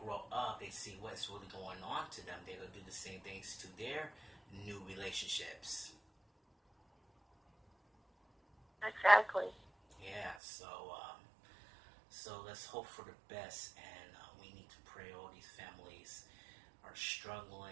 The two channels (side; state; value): left; drops out; at 10.4 s